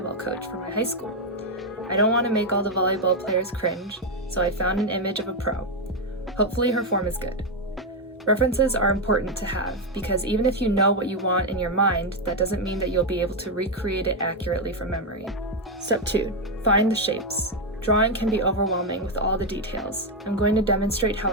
coach for my high school. I don't want to make all the volleyball players cringe, so I found an image of a pro. Hopefully her form is good. References are important to have because even if you know what you want in your mind, that doesn't mean that you'll be able to recreate it accurately from memory. Step 2. Find the shapes. Drawing can be overwhelming with all the details. I'm going to demonstrate how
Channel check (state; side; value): normal; both; correlation 0.04